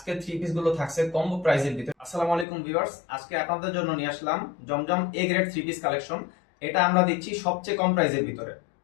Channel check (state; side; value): drops out; right; at 2.5 s